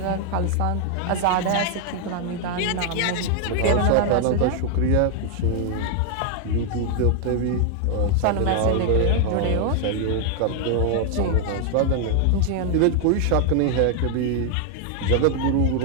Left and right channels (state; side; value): different; both; correlation 0.00